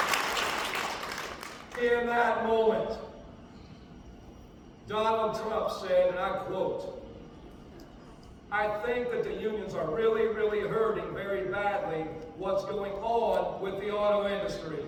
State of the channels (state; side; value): identical; both; correlation 1.00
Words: In that moment, Donald Trump said, and I quote, "I think that the unions are really, really hurting very badly what's going on with the auto industry,"